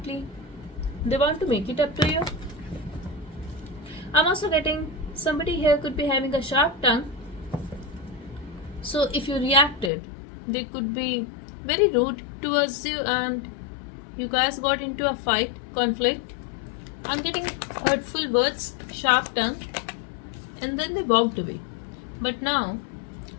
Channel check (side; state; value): right; drops out; at 9.9 s